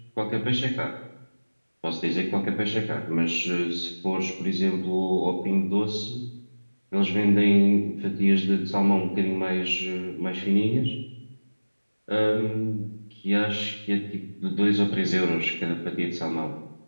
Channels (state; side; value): inverted; both; correlation -1.00